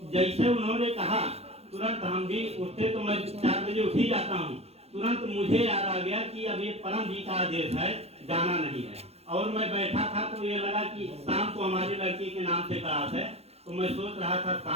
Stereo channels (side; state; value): left; late; 0.30 ms